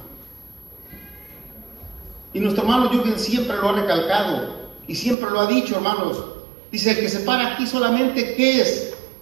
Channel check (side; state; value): left; drops out; at 5.2 s